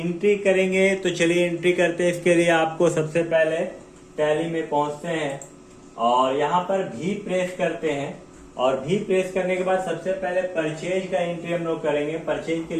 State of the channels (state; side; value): identical; both; correlation 1.00